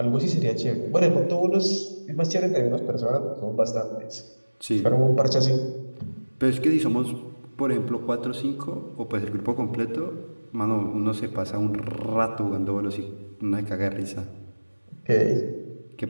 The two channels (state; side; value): inverted; both; correlation -1.00